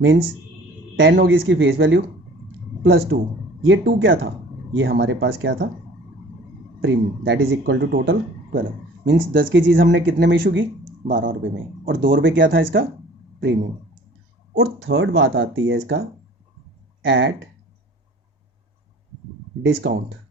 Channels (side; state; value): both; normal; correlation 0.48